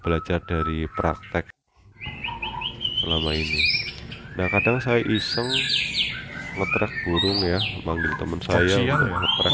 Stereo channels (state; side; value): identical; both; correlation 1.00